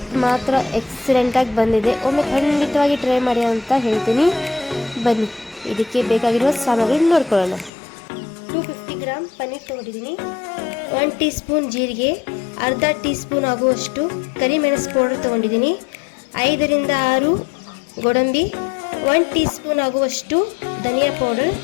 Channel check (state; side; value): drops out; right; at 7.7 s